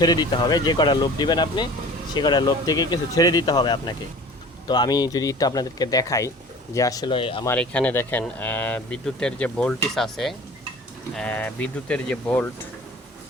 দিতে হবে, যে কটা লোভ দিবেন আপনি সে কটা লোভ থেকে কিছু ছেড়ে দিতে হবে আপনাকে। তো আমি যদি একটু আপনাদেরকে দেখাই যে আসলে আমার এখানে দেখেন বিদ্যুতের যে ভোল্টেজ আছে, বিদ্যুতের যে ভোল্ট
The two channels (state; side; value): normal; both; correlation 0.43